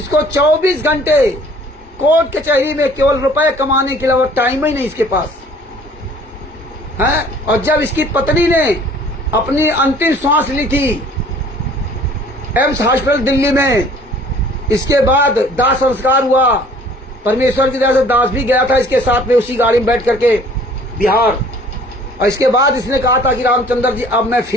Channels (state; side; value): normal; both; correlation 0.53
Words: 24 घंटे कोर्ट कचहरी में केवल रुपए कमाने के अलावा टाइम ही नहीं इसके पास है। और जब इसकी पत्नी ने अपनी अंतिम सांस ली थी एम्स हॉस्पिटल दिल्ली में, इसके बाद दाह संस्कार हुआ, परमेश्वर की दया से दास भी गया था इसके साथ में उसी गाड़ी में बैठ करके बिहार। और इसके बाद इसने कहा था कि रामचंद्र जी अब मैं